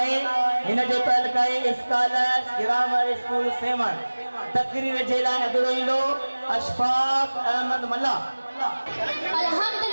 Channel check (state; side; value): inverted; both; correlation -1.00